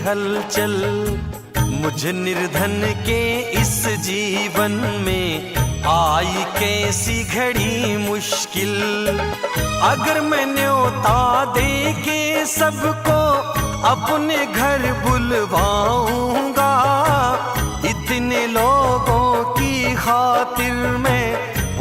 हलचल, मुझ निर्धन के इस जीवन में आई कैसी घड़ी मुश्किल। अगर मैं न्योता दे के सबको अपने घर बुलवाऊंगा, इतने लोगों की खातिर मैं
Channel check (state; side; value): identical; both; correlation 1.00